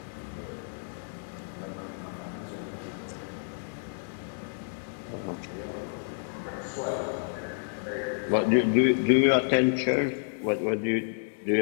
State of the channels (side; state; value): right; silent; digital silence